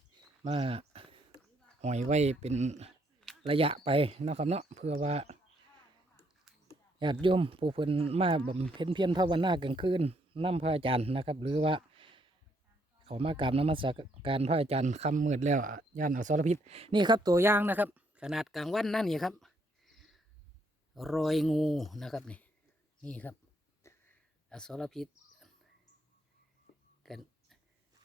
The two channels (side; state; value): both; normal; correlation 0.71